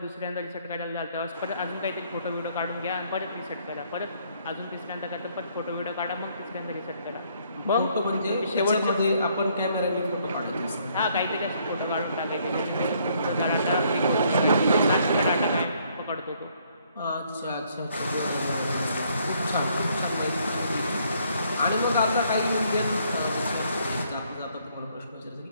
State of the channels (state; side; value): inverted; both; correlation -0.67